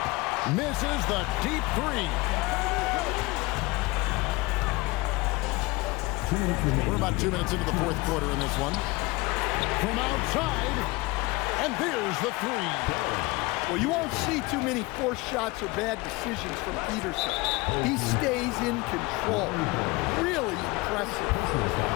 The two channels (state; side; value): quieter; right; 23.0 dB